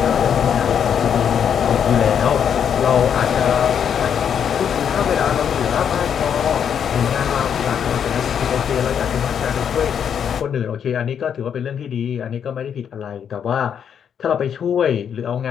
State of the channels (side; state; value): right; quieter; 8.1 dB